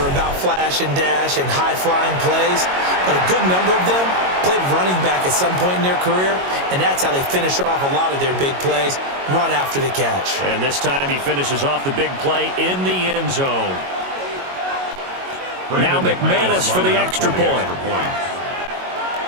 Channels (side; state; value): left; late; 22 ms